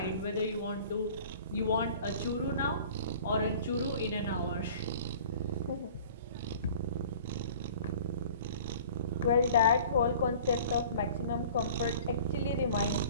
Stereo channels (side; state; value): both; inverted; correlation -0.46